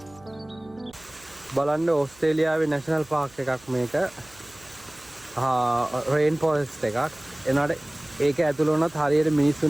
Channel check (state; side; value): noise; right; hum, 26 dB below the sound